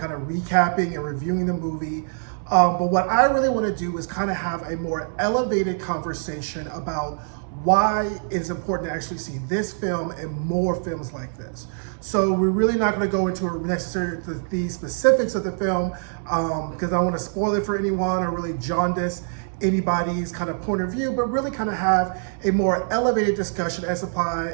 of recapping and reviewing the movie. But what I really want to do is kind of have a more elevated conversation about why it's important to actually see this film and more films like this. So we're really not going to go into necessarily the specifics of the film because I don't want to spoil it for anyone or really jaundice anybody's kind of point of view, but really kind of have a more elevated discussion as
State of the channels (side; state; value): left; silent; digital silence